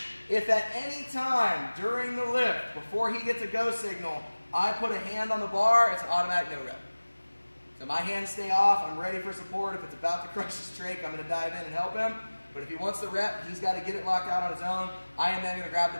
If at any time during the lift, before he gets a go signal, I put a hand on the bar, it's an automatic no rep. So my hands stay off, I'm ready for support. If it's about to crush his trach, I'm gonna dive in and help him. But if he wants the rep, he's gotta get it locked out on his own. I am then gonna grab the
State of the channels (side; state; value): both; inverted; correlation -1.00